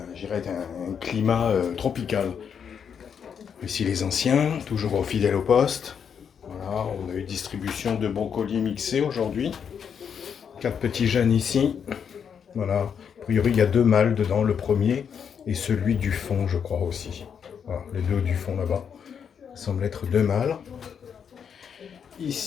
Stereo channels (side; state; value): right; quieter; 7.4 dB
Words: dirais un climat tropical. Ici les anciens, toujours fidèles au poste. Voilà, on a eu distribution de brocolis mixés aujourd'hui. 4 petits jeunes ici. Voilà. A priori, il y a 2 mâles dedans, le premier et celui du fond, je crois aussi. Voilà, les deux du fond là-bas. Ça semble être 2 mâles.